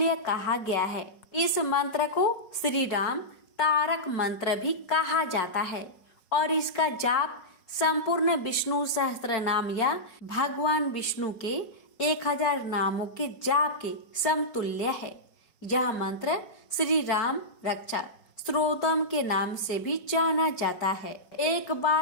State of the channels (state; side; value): late; right; 5.4 ms